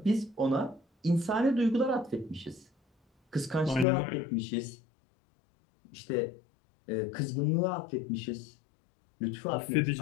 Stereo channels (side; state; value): right; drops out; at 3.9 s